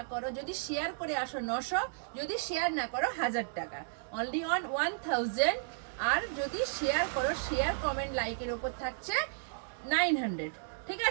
করো, যদি শেয়ার করে আসো 900, যদি শেয়ার না করো 1000 টাকা, অনলি অন 1000। আর যদি শেয়ার করো, শেয়ার কমেন্ট লাইকের ওপর থাকছে 900। ঠিক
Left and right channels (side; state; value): left; silent; digital silence